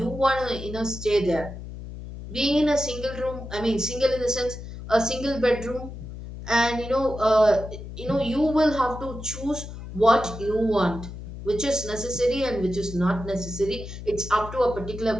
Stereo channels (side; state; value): left; noise; hum, 11 dB below the sound